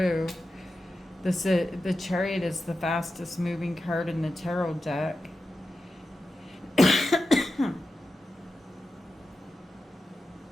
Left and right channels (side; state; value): both; normal; correlation 0.91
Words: The Chariot is the fastest moving card in the tarot deck.